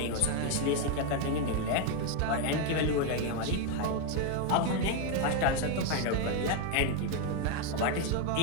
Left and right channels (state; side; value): different; both; correlation 0.01